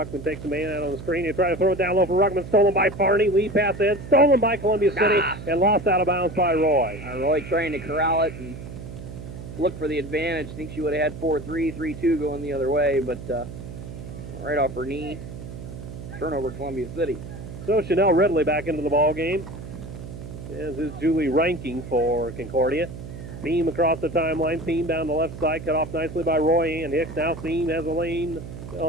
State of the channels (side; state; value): right; noise; hum, 11 dB below the sound